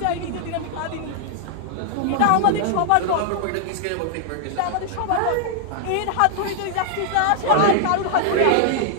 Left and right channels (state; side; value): different; both; correlation -0.01